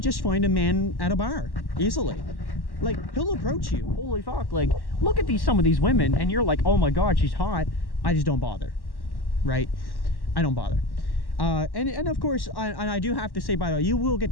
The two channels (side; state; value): right; late; 1.1 ms